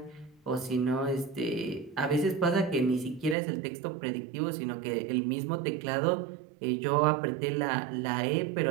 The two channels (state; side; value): drops out; left; at 3.4 s